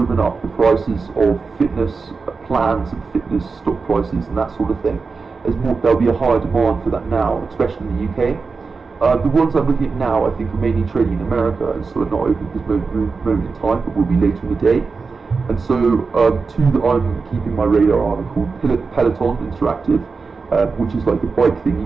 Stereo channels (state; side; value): quieter; left; 4.6 dB